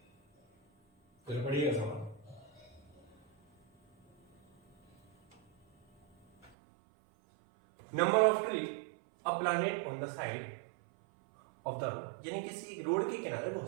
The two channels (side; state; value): left; drops out; at 6.5 s